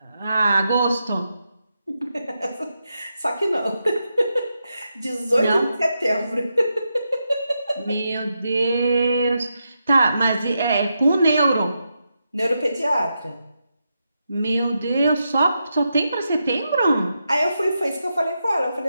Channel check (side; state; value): both; inverted; correlation -0.85